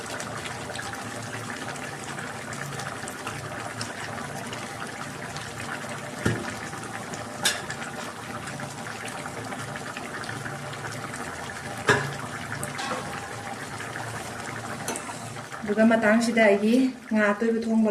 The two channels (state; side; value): identical; both; correlation 1.00